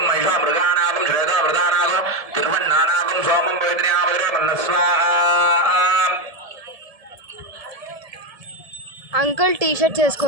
महिषा मृगाणागं श्वेता वृदानागं तिरुवन्नानागं सोमं वेदन्यामधुरे मन्नस्वाहा అంకుల్ టీ షర్ట్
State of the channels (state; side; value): late; left; 1.7 ms